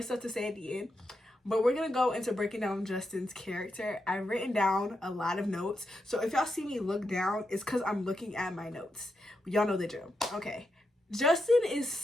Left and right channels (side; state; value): both; normal; correlation 0.85